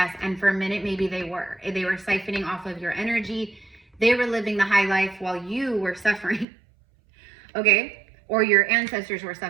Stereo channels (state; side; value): drops out; left; at 6.5 s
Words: And for a minute, maybe they were. They were siphoning off of your energy. They were living the high life while you were suffering. Okay? or your ancestors were